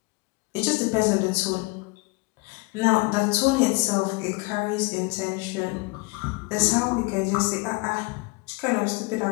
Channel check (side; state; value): right; quieter; 26.6 dB